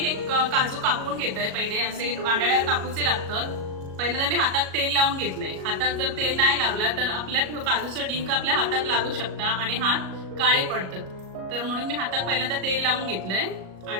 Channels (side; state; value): left; late; 37 ms